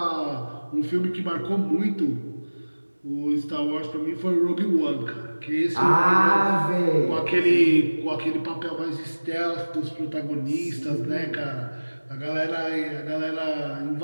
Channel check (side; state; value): both; inverted; correlation -1.00